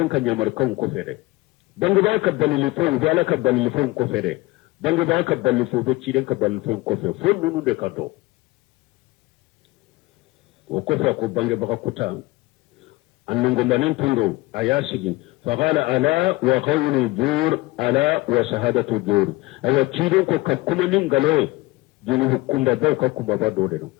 ka nyamaru kan ko fere bange baga ka balilifon be ala ka balilifon ko fere bange baga ka balilifo be ciden ka balilifon ko fere fo nunu de ka do o ko fa ko bange baga kuta annango manen tundo ayasigi faqala ala wa qawlu jur ala wa shahadatu jur awa ciden ko kakkuma nin galoye junubu kumba baw ka kumba ba dode do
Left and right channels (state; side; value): quieter; right; 20.8 dB